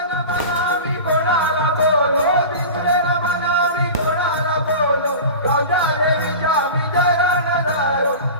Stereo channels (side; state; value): both; inverted; correlation -0.32